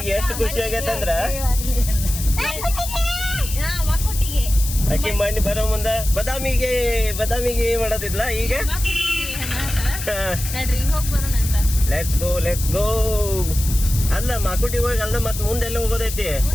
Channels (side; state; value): left; noise; hiss, 7 dB below the sound